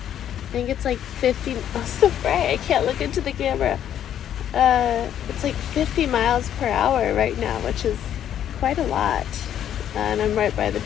I think it's like 50, oh, so bright, I can't look into the camera. It's like 50 miles per hour right now, which is quite a lot. And I'm right by the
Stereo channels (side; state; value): right; quieter; 10.2 dB